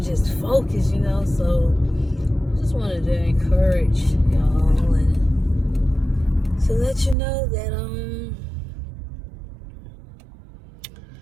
focus, you know. So I just wanted to encourage y'all and to let you know that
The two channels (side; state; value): left; drops out; at 7.2 s